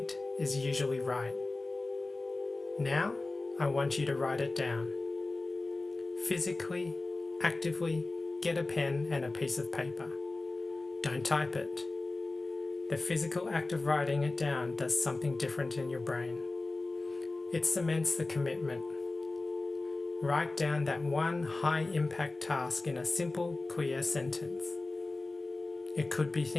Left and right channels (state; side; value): quieter; right; 3.2 dB